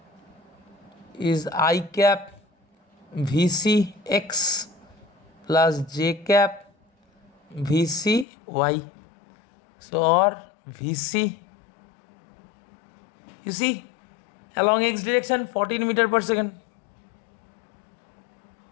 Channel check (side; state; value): right; drops out; at 8.2 s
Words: is I cap Vc x plus j cap Vc y. So or Vc, you see, along x direction 14 meter per second.